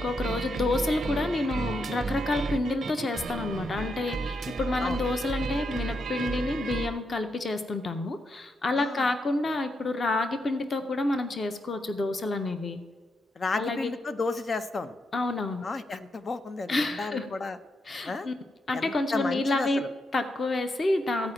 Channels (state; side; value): normal; both; correlation 0.82